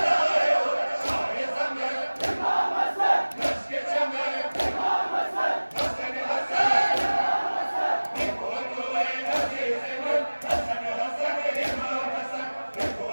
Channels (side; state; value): both; inverted; correlation -1.00